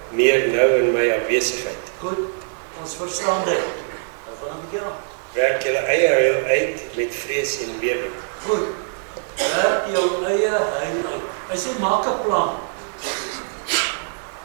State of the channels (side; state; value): left; silent; digital silence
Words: meer nou in my afwesigheid. Goed, ons verstaan dit. Nou gaan 'n bietjie aan. Werk julle eie heil uit met vrees en bewering. Goed, werk jou eie heil uit. Hy sê, maak 'n plan.